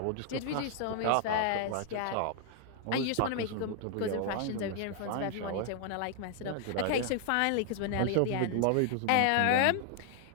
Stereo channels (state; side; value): different; both; correlation 0.00